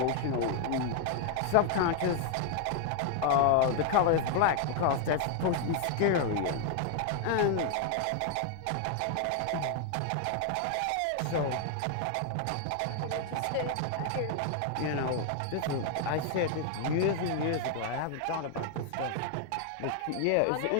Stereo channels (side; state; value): both; different; correlation 0.00